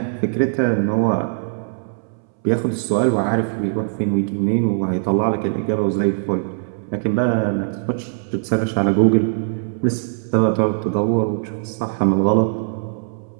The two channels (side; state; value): left; silent; 65 dB below the other